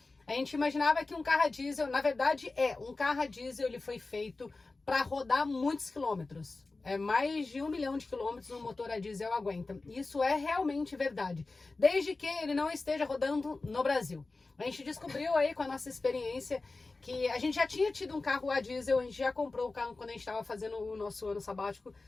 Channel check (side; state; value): right; quieter; 3.5 dB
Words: A gente imaginava que um carro a diesel, na verdade um carro a diesel, ele foi feito para rodar muitos quilômetros. Mais de 1 milhão de quilômetros um motor a diesel aguenta. Isso é realmente verdade, desde que ele não esteja rodando no Brasil. A gente descobriu aí com a nossa experiência que a gente já tinha tido um carro a diesel, a gente já comprou o carro quando a gente estava fazendo o nosso ano sabático.